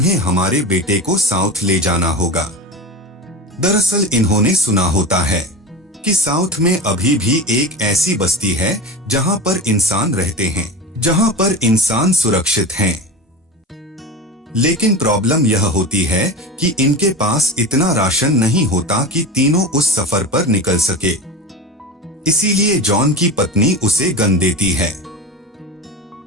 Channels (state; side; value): normal; both; correlation 0.28